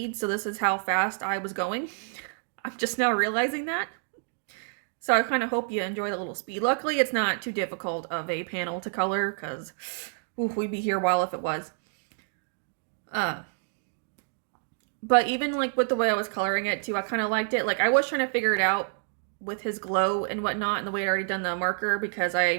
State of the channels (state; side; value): silent; left; 59 dB below the other